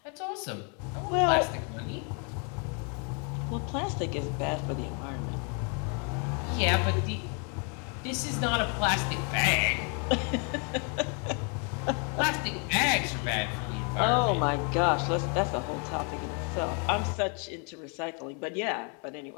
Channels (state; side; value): quieter; right; 37.4 dB